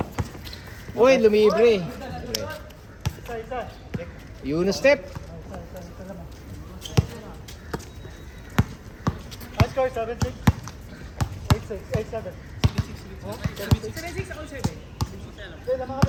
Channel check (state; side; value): identical; both; correlation 1.00